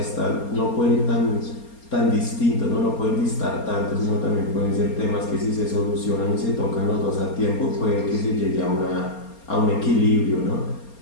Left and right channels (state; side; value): late; right; 4.3 ms